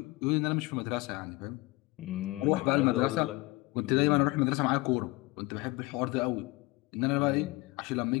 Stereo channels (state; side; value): quieter; right; 22.5 dB